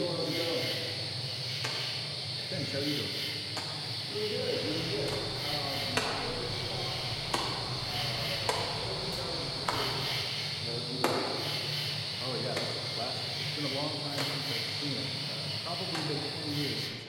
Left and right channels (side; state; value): both; identical; correlation 1.00